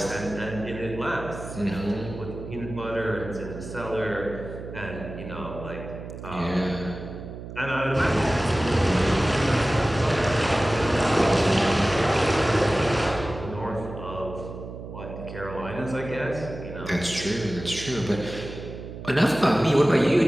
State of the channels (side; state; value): right; noise; hum, 11 dB below the sound